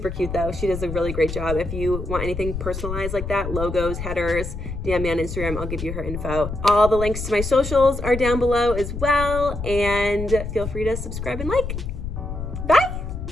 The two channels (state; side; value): noise; left; rumble, 6 dB below the sound